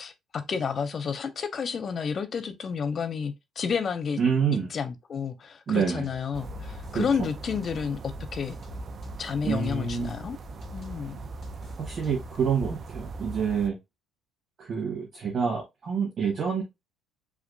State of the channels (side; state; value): both; normal; correlation 0.70